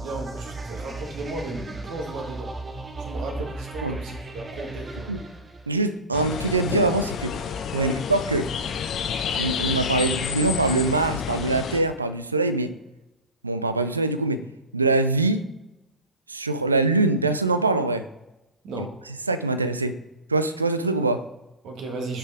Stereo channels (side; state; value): both; inverted; correlation -0.35